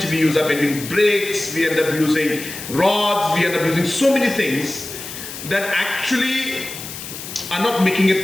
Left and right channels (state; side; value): noise; left; hiss, 10 dB below the sound